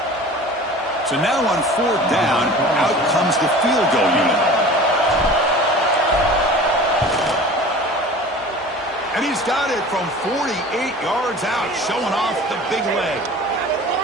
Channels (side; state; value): both; normal; correlation 0.41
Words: So now on fourth down, out comes the field goal unit. And he's got it from 48 yards out, showing off the big leg.